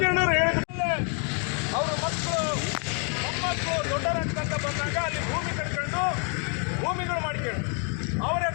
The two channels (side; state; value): right; quieter; 39.4 dB